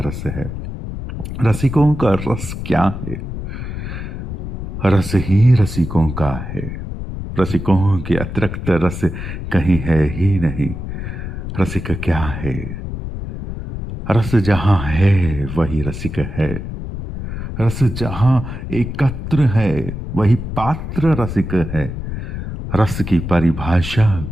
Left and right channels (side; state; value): left; noise; rumble, 7 dB below the sound